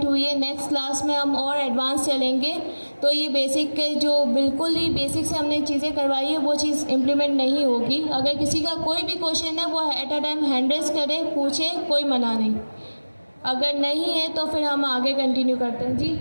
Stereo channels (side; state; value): both; inverted; correlation -1.00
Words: हुई है। नेक्स्ट क्लास में हम और एडवांस चलेंगे। तो ये बेसिक के जो बिल्कुल ही बेसिक से हमने चीज़ें करवाई है वो चीज़ इम्प्लीमेंट नहीं होगी। अगर किसी का कोई भी क्वेश्चन है वो at a time hand raise करे, पूछे, कोई मना नहीं। अगर नहीं है तो फिर हम आगे कंटिन्यू करते हैं। जी